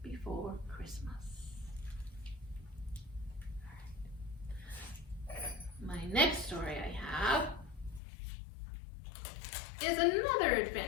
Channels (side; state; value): right; drops out; at 8.0 s